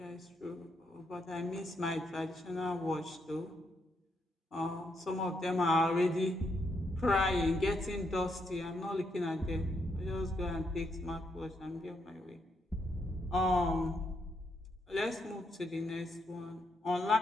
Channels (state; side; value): normal; both; correlation 0.78